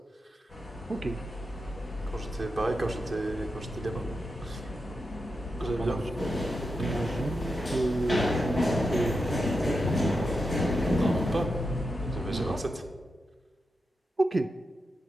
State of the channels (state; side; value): normal; both; correlation 0.87